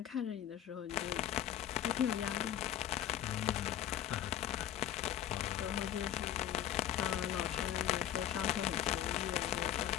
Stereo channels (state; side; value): quieter; right; 11.2 dB